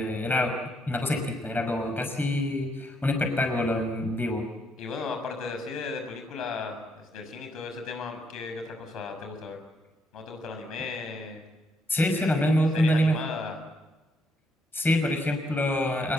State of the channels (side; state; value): both; normal; correlation 0.74